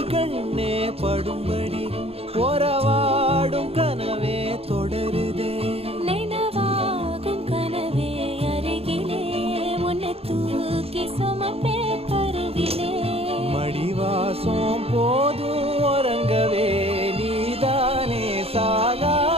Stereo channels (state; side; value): late; left; 0.29 ms